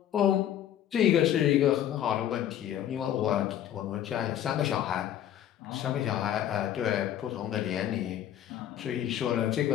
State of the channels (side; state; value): right; quieter; 11.0 dB